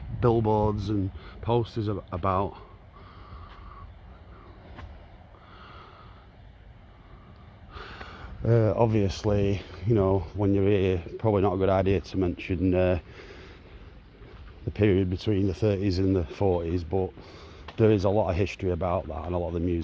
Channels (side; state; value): both; identical; correlation 1.00